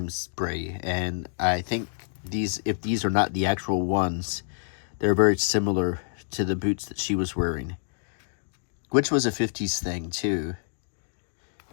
spree, and I think if these are not the actual ones, they're very similar to the boots that she was wearing, which was a 50s thing too.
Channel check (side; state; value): right; silent; digital silence